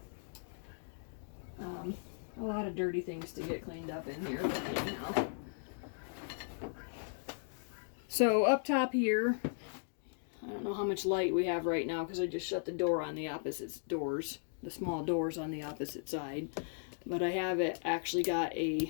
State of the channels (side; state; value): right; silent; digital silence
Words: A lot of dirty things to get cleaned up in here, but anyhow. So up top here, I don't know how much light we have right now because I just shut the door on the opposite doors, the small doors on the opposite side. But I have it actually got